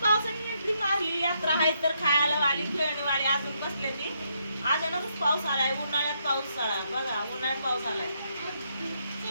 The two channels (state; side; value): inverted; both; correlation -0.76